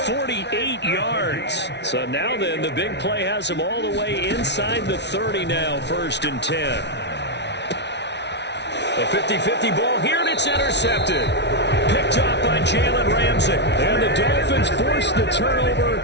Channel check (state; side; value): late; right; 0.50 ms